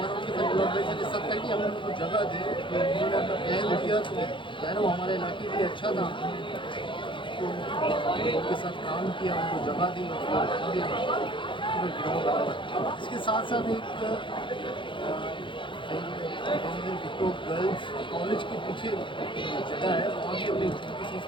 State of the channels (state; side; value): late; right; 0.24 ms